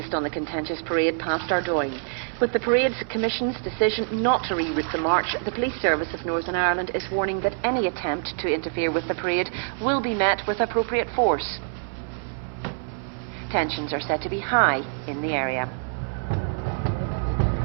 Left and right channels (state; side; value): silent; left; digital silence